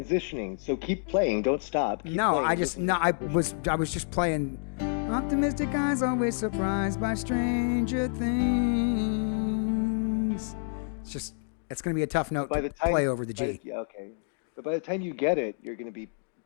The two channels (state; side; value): silent; right; digital silence